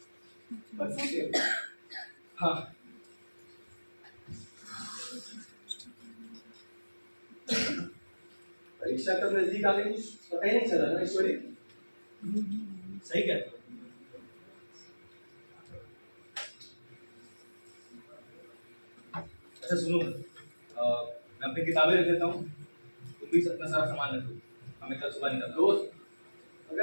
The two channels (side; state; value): both; inverted; correlation -1.00